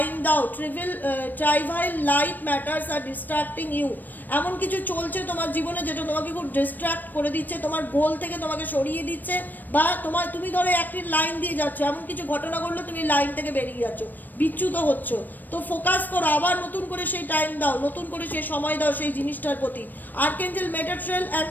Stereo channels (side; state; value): right; late; 0.089 ms